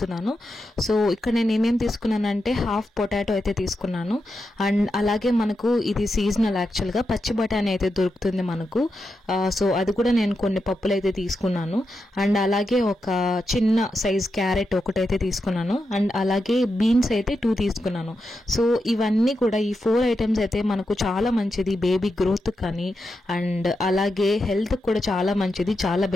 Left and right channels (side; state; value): both; normal; correlation 0.87